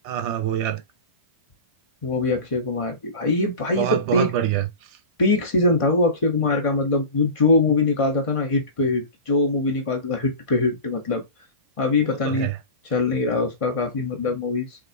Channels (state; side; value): late; right; 1.5 ms